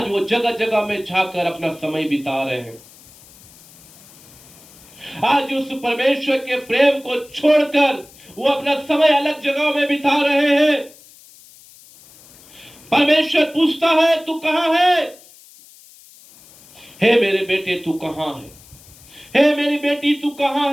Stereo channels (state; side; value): noise; left; hiss, 24 dB below the sound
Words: वो जगह जगह में जाकर अपना समय बिता रहे हैं। आज उस परमेश्वर के प्रेम को छोड़कर वो अपना समय अलग जगह में बिता रहे हैं। परमेश्वर पूछता है, तू कहां है? हे मेरे बेटे तू कहां है? हे मेरी बेटी तू